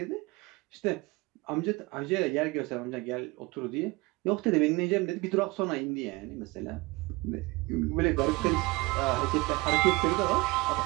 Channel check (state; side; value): quieter; left; 23.0 dB